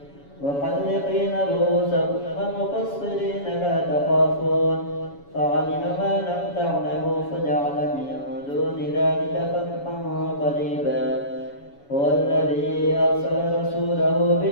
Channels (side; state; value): right; late; 7.1 ms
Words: محلقين رؤوسكم ومقصرين لا تخافون فعلم ما لم تعلموا فجعل من دون ذلك فتحا قريبا. هو الذي أرسل رسوله